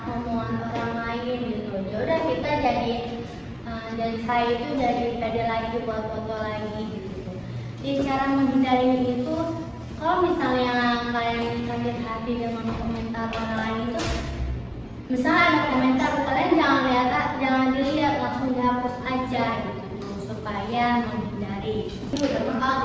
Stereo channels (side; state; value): both; identical; correlation 1.00